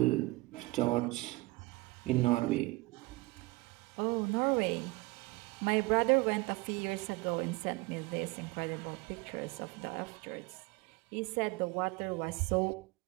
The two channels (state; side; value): quieter; left; 22.6 dB